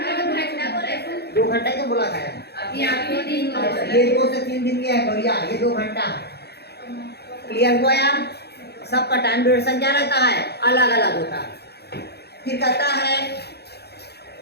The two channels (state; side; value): late; right; 0.48 ms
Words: 2 घंटा ही तो बोला था यार। अभी आखिरी दिन हो गया। ये 2 से 3 दिन की है गोरिया, ये 2 घंटा है। क्लियर हुआ यार? सबका टाइम ड्यूरेशन क्या रहता है, अलग अलग होता है। फिर कहता है